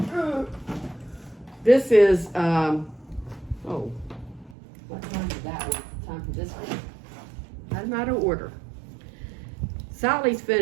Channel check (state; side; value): drops out; left; at 4.5 s